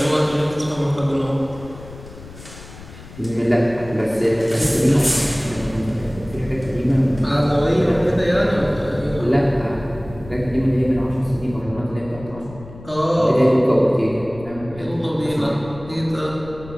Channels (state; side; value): noise; left; rumble, 17 dB below the sound